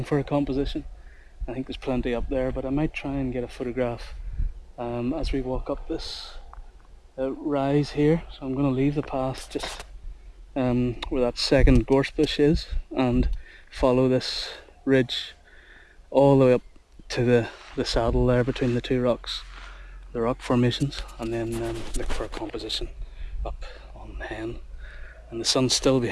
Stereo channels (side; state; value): both; identical; correlation 1.00